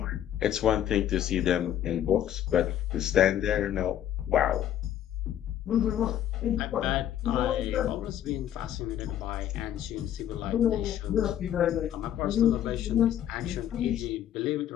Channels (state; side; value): quieter; right; 11.0 dB